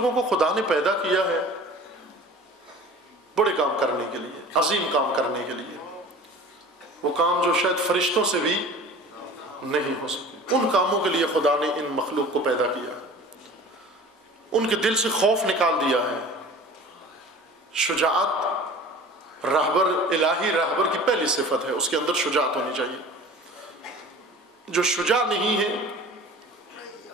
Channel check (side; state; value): both; normal; correlation 0.42